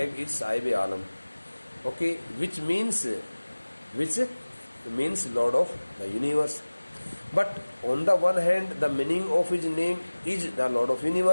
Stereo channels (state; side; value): inverted; both; correlation -1.00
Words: is Sahib Alam, okay, which means Lord of the Universe. But on the one hand, the meaning of his name is the Lord of